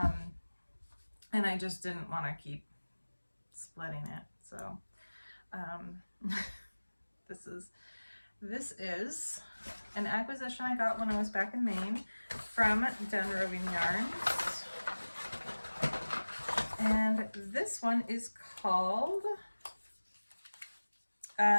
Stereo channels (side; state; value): both; inverted; correlation -1.00